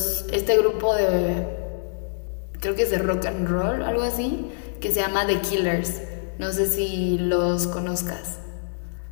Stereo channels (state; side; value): silent; right; digital silence